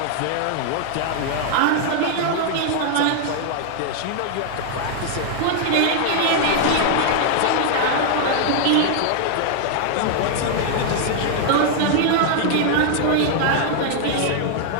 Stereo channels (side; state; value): both; different; correlation 0.00